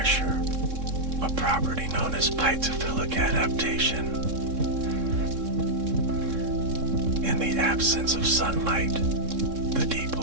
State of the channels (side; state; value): left; late; 3.7 ms